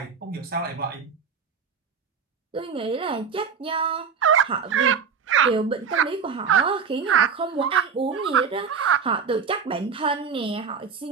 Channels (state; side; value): quieter; left; 6.2 dB